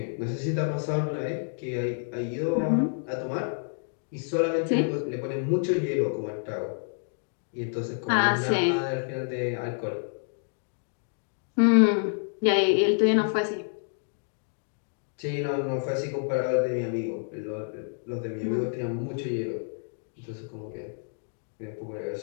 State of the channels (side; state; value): right; silent; digital silence